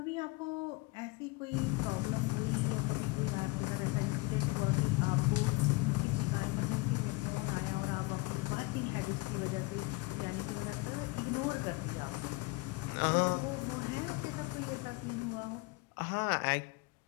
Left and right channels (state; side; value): quieter; right; 23.3 dB